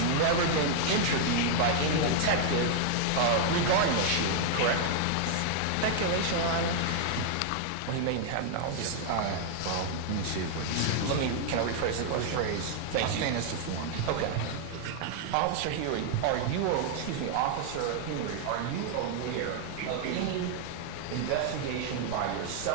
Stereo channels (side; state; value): both; different; correlation 0.00